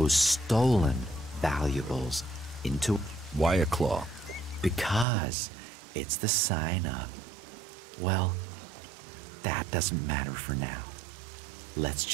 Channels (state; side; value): drops out; left; at 5.1 s